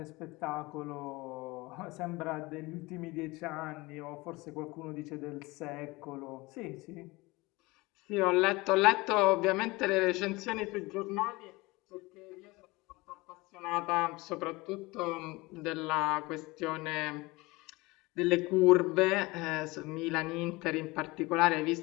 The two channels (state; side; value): quieter; right; 22.7 dB